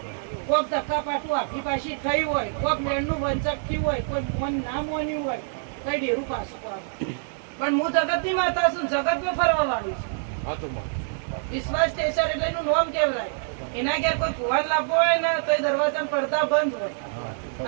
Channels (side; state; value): left; silent; digital silence